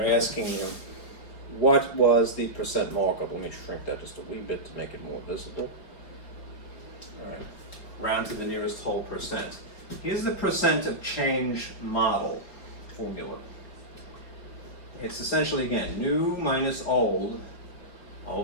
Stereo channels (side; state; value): right; late; 4.3 ms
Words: asking you, what was the percent markup? Let me shrink that just a wee bit to make it more visible. All right. Round to the nearest whole percent. Here's the percent of change model formula. It's essentially, again, new minus old